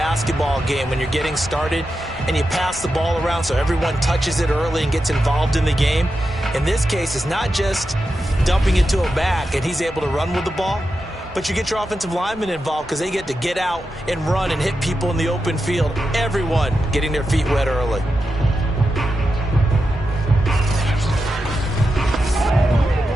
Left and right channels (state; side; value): normal; both; correlation 0.89